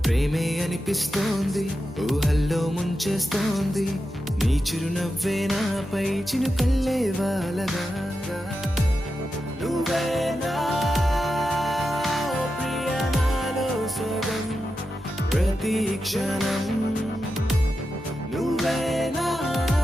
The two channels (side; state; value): both; normal; correlation 0.89